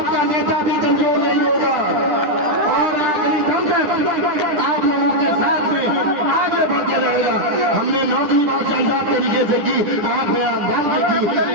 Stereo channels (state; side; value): late; left; 10 ms